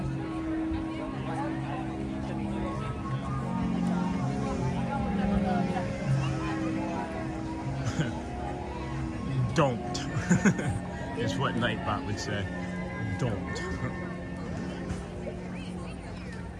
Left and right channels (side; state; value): both; identical; correlation 1.00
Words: Don't is what Nightbot would say. Don't.